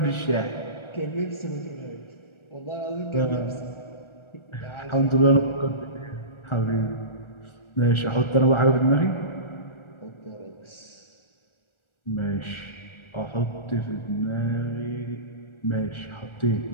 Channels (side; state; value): right; late; 1.4 ms